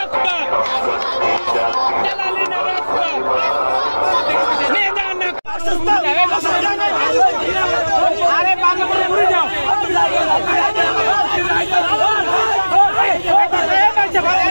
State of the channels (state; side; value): inverted; both; correlation -1.00